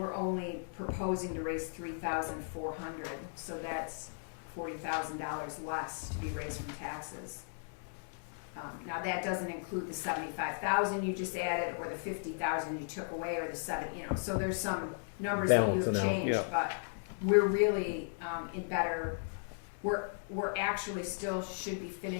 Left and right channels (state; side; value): silent; right; 54 dB below the other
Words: only proposing to raise $3,400, so that's $40,000 less to be raised from taxes. Now that doesn't include the $75,000 you just added, or the $50,000 you took away, or the so there's some numbers that you have Balancing out, changed, yeah. but we're really in better. We're actually still should be